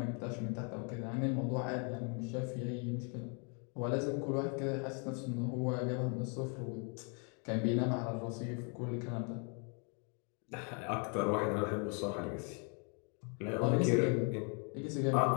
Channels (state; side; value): quieter; right; 38.5 dB